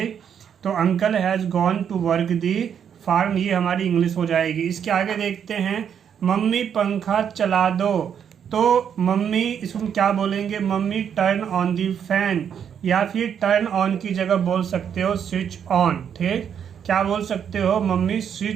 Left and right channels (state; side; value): quieter; left; 8.2 dB